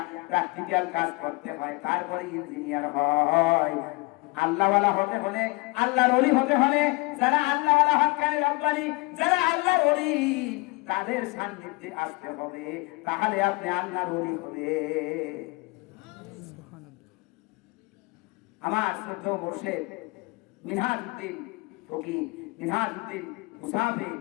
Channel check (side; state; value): right; quieter; 24.5 dB